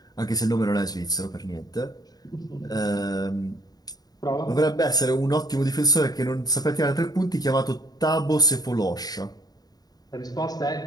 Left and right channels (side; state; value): right; late; 0.19 ms